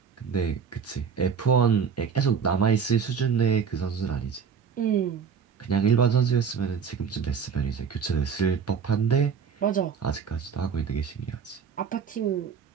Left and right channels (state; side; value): quieter; left; 6.6 dB